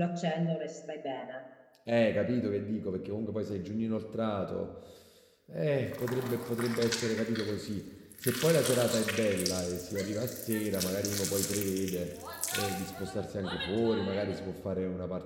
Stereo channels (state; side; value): identical; both; correlation 1.00